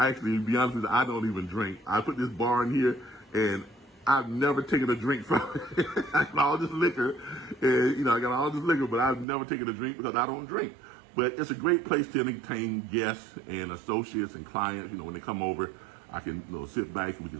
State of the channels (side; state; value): left; drops out; at 9.2 s